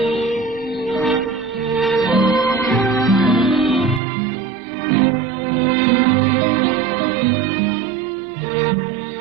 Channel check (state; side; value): drops out; left; at 4.0 s